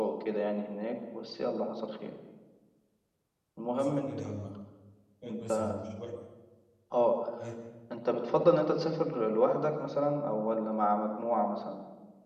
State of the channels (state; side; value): identical; both; correlation 1.00